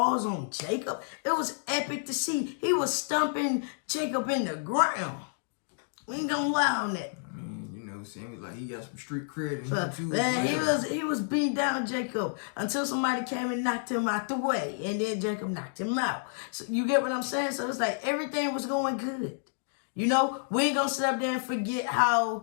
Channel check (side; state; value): right; silent; digital silence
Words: on Jacob, it was epic to see. He was stumping Jacob in the ground. We ain't going to lie on that. Sammy, like, he got some street cred in him too. Man, he was beating down Jacob until somebody came and knocked him out the way, and then Jacob knocked him out. So you get what I'm saying? So it's like everything was going good. You know, we ain't gonna sit up there and forget